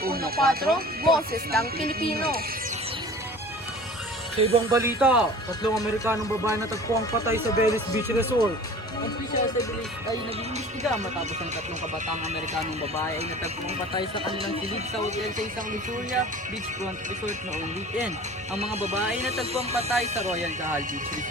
Boses ng Pilipino. Sa ibang balita, 3 Amerikanong babae natagpo ang patay sa Venice Beach Resort. Ang official sa bilis ay nag-iimbestiga matapos ang 3 kabataang Amerikanong babae ay natagpong patay sa kanilang silid sa hotel sa isang Luxuria Beachfront Resort noong weekend. Ang mga babae ay natagpong patay sa Royal Cahal Beach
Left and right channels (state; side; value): normal; both; correlation 0.43